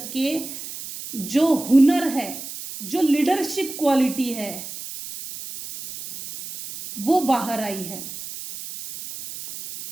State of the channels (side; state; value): right; noise; hiss, 10 dB below the sound